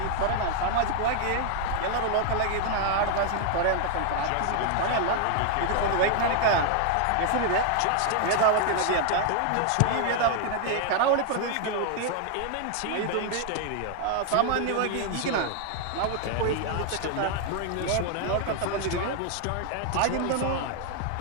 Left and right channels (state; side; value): different; both; correlation 0.00